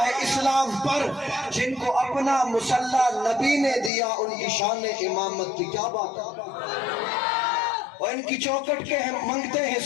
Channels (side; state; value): right; drops out; at 3.9 s